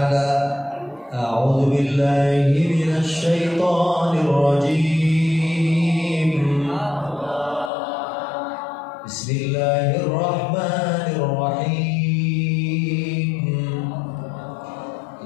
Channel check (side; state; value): right; drops out; at 7.7 s